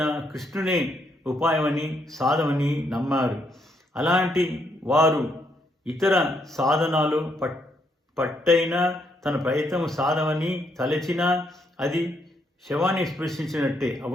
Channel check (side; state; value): both; normal; correlation 0.75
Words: కృష్ణునే ఉపాయమని సాధమని నమ్మారు. అలాంటి వారు ఇతర సాధనాలు పట్టైన తన ప్రయత్నము సాధమని తలచినా అది శవాన్ని స్పృశించినట్టే.